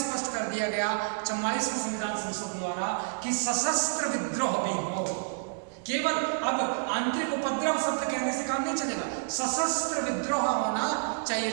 कर दिया गया 44वें संविधान संशोधन द्वारा कि सशस्त्र विद्रोह भी हो। केवल अब आंतरिक उपद्रव शब्द कहने से काम नहीं चलेगा, सशस्त्र विद्रोह होना चाहिए।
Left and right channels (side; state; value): left; silent; digital silence